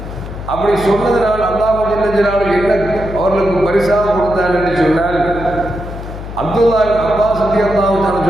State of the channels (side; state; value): left; noise; hum, 10 dB below the sound